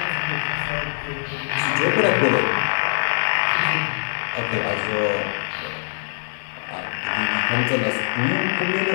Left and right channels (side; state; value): right; silent; digital silence